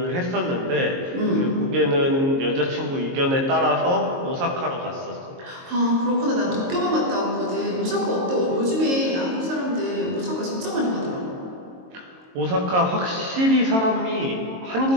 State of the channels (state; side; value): late; left; 22 ms